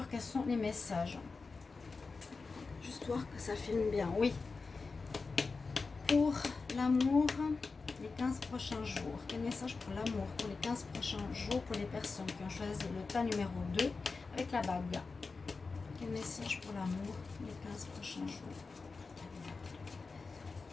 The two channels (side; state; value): right; quieter; 4.3 dB